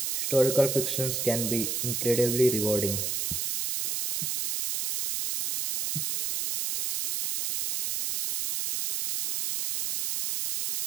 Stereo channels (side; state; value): right; noise; hiss, 1 dB below the sound